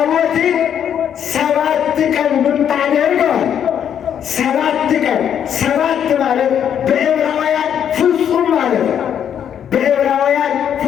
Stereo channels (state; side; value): quieter; right; 9.0 dB